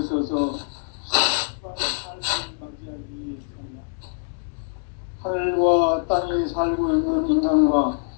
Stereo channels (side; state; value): right; silent; digital silence